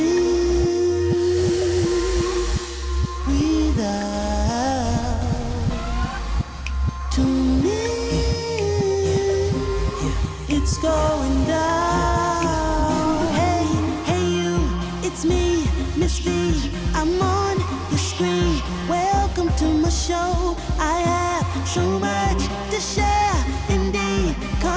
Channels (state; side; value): identical; both; correlation 1.00